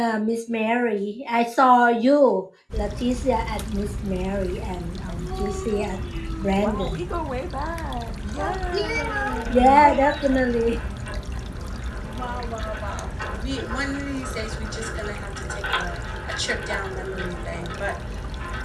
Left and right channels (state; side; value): identical; both; correlation 1.00